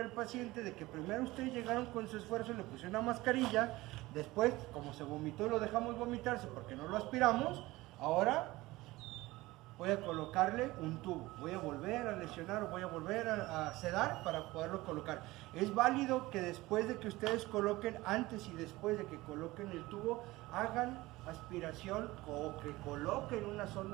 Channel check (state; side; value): quieter; left; 19.4 dB